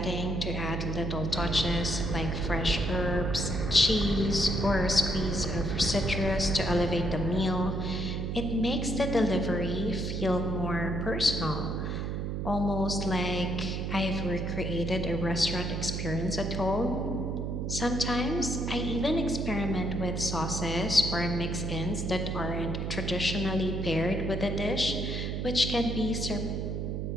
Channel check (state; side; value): noise; right; hum, 2 dB below the sound